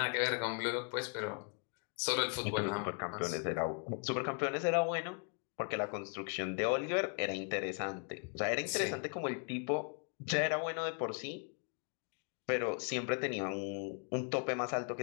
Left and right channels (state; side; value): quieter; right; 39.2 dB